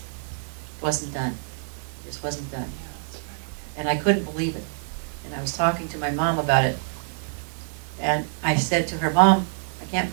wasn't done. It just wasn't done. And I couldn't believe it. And I was talking to my mom about it. And I said to her, Mom, I can't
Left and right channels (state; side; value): silent; left; 61 dB below the other